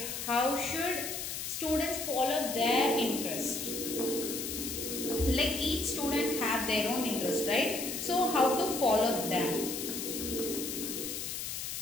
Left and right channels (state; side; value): noise; left; hiss, 5 dB below the sound